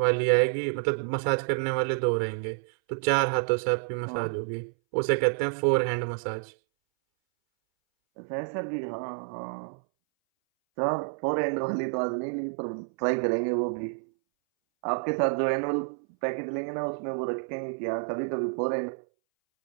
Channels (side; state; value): left; silent; 59 dB below the other